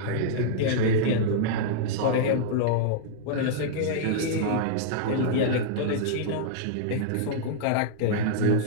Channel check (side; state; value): both; different; correlation -0.02